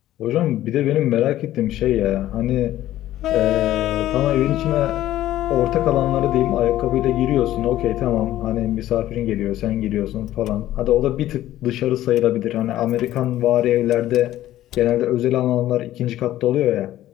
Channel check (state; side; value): quieter; right; 13.9 dB